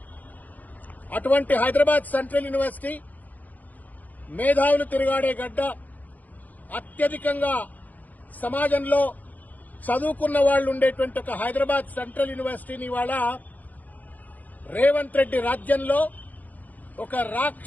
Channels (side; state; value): right; late; 0.080 ms